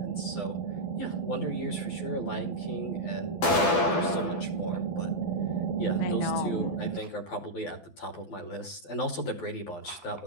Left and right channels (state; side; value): late; right; 12 ms